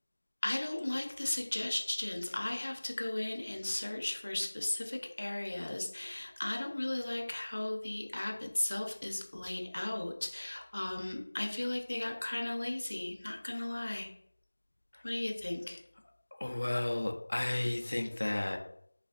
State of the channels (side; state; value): both; inverted; correlation -1.00